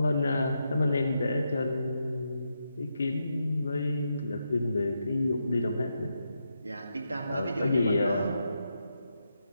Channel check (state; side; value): inverted; both; correlation -0.84